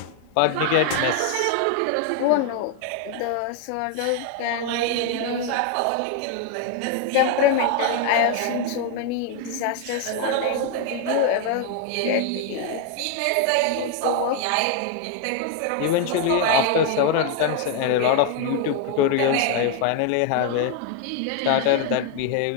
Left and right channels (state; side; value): different; both; correlation 0.01